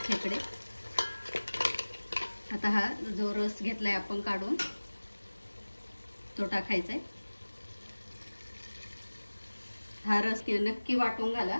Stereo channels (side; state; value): both; inverted; correlation -1.00